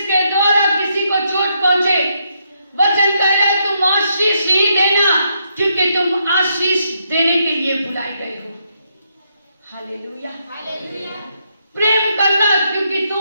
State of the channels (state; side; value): inverted; both; correlation -0.78